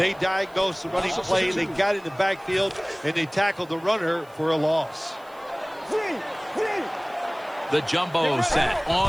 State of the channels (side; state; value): right; noise; hiss, 28 dB below the sound